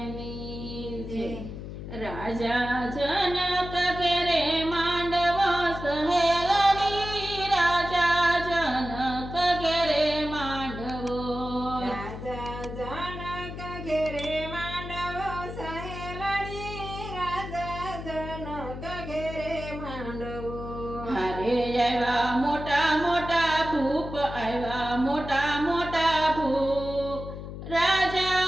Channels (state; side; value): noise; left; hum, 9 dB below the sound